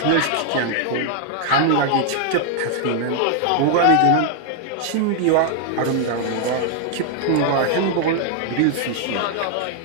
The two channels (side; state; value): both; different; correlation 0.00